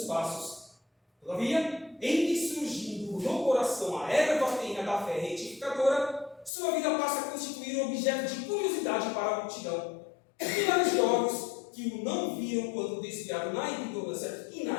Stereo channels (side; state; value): right; drops out; at 6.5 s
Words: passos. Todavia, em que surgindo no coração a erva tenha da fé retificadora, sua vida passa a constituir objeto de curiosidade para a multidão. Milhares de olhos que o não viram quando desviado na ignorância e